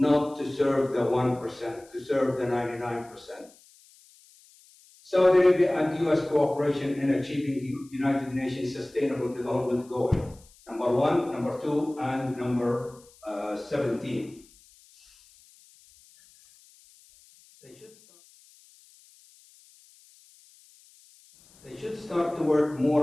to serve the 1%, to serve the 99%. Saudi Arabia and U.S. cooperation in achieving the United Nations Sustainable Development Goal, number 1, number 2, and number 17. They should start to work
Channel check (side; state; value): left; noise; hiss, 27 dB below the sound